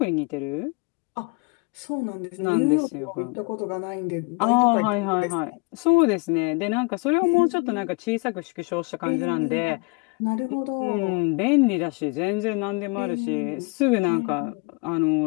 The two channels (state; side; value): quieter; right; 29.9 dB